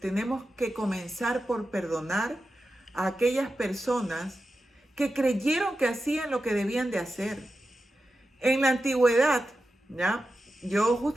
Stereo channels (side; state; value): both; normal; correlation 0.91